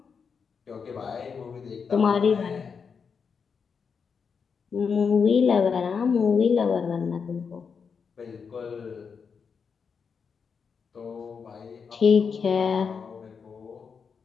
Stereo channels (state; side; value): quieter; right; 6.0 dB